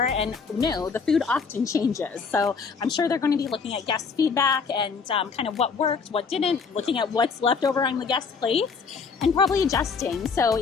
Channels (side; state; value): right; quieter; 5.3 dB